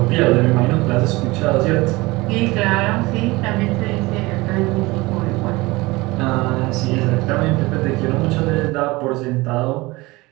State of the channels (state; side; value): quieter; left; 21.9 dB